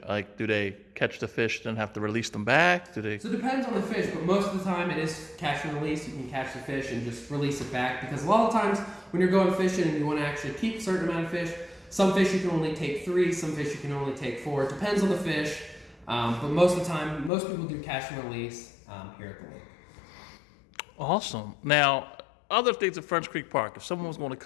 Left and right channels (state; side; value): drops out; right; at 17.3 s